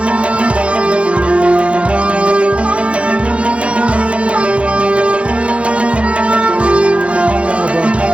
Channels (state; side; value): late; left; 0.061 ms